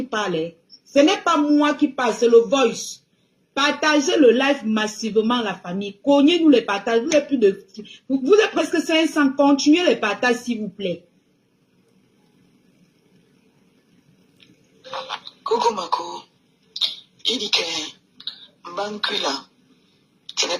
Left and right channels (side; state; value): both; identical; correlation 1.00